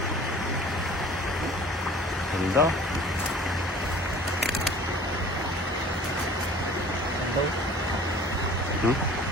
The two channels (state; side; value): normal; both; correlation 0.47